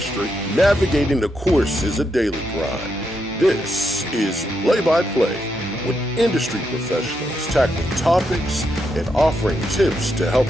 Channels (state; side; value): normal; both; correlation 0.81